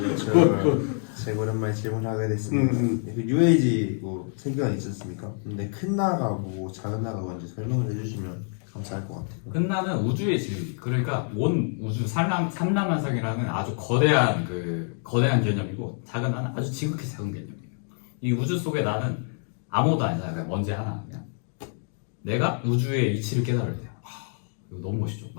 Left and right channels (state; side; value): silent; right; 55 dB below the other